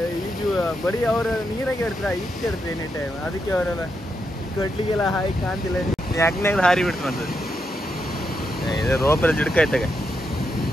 ಈಜು. ಬರೀ ಅವರು ನೀರಾಗೆ ಇರ್ತಾರೆ, ಈಜು ಇರ್ತಾರೆ ಎನಿ ಟೈಮ್. ಅದಕ್ಕೆ ಅವರೆಲ್ಲ ಕಡ್ಲಿಗೆಲ್ಲ ಹಾಯಿ ಕಾಣ್ತಿಲ್ಲ, ಯಾಕನಾಗ ಹಾರಿ ಬಿಡ್ತಂತದ್ದು. ಇದು ರೋಪೆಲ್ಲ ಜಿಡ್ಕಾಯ್ತಾಗ.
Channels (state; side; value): normal; both; correlation 0.83